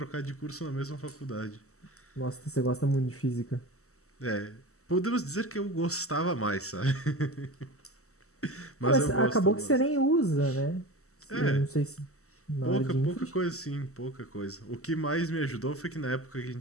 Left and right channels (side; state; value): right; late; 0.64 ms